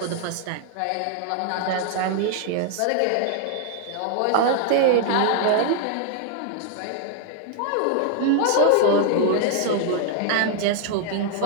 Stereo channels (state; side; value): different; both; correlation 0.00